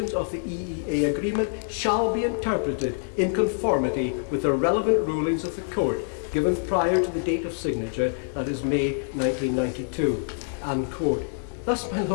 of the EEA agreement shall be interpreted in conformity with the relevant rulings of the Court, given prior to the date of signature, that is May 1992. End quote. Thus, my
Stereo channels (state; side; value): silent; right; digital silence